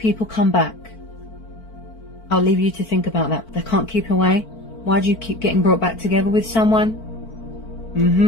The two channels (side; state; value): right; late; 4.5 ms